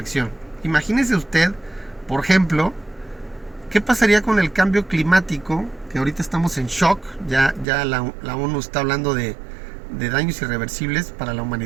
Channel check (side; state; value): left; drops out; at 7.7 s